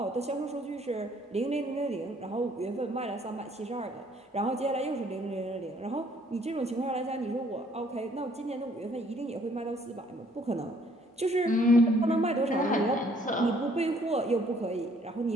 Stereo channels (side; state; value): both; normal; correlation 0.62